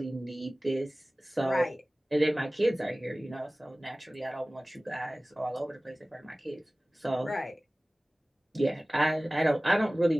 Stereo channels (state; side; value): normal; both; correlation 0.98